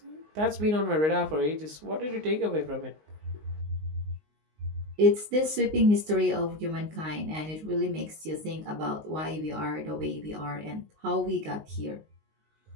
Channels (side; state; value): left; late; 19 ms